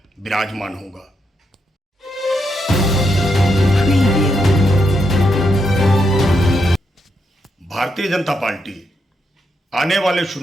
विराजमान होगा। भारतीय जनता पार्टी आने वाले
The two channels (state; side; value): normal; both; correlation 0.81